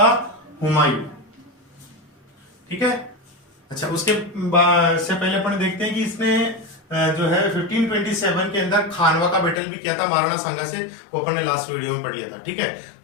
हुमायूं। ठीक है, अच्छा, उसके से पहले अपन देखते हैं कि इसने जो है 1527 के अंदर खानवा का बैटल भी किया था महाराणा सांगा से, वो अपन ने लास्ट वीडियो में पढ़ लिया था। ठीक है,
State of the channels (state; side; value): drops out; right; at 9.6 s